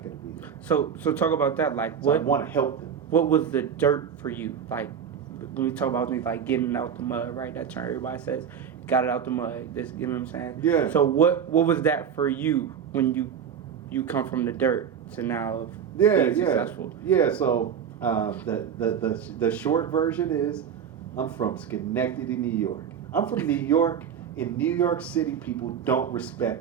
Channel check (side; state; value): left; quieter; 7.9 dB